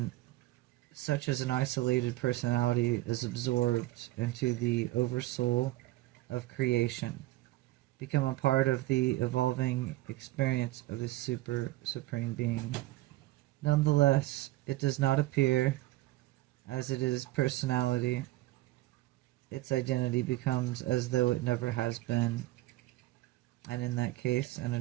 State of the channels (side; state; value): left; quieter; 17.1 dB